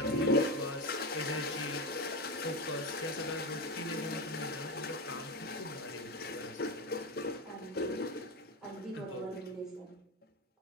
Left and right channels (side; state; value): both; normal; correlation 0.17